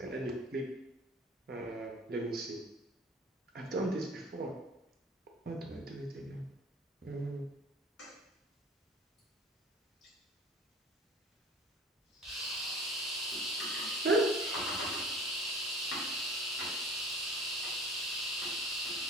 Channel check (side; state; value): both; normal; correlation 0.44